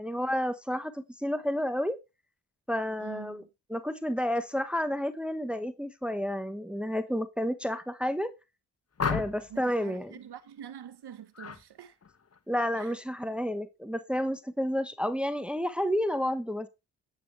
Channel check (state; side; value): normal; both; correlation 0.88